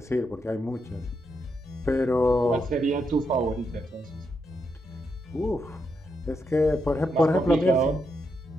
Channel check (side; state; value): both; normal; correlation 0.81